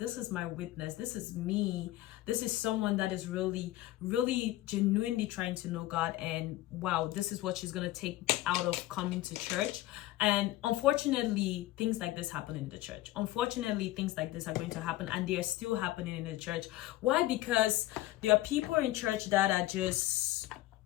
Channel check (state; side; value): quieter; right; 16.3 dB